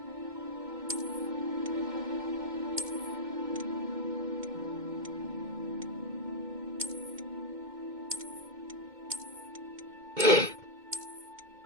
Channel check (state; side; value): late; left; 2.2 ms